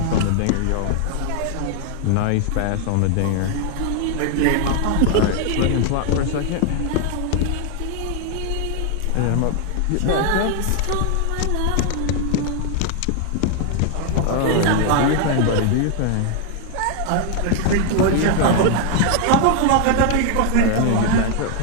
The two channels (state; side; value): different; both; correlation 0.00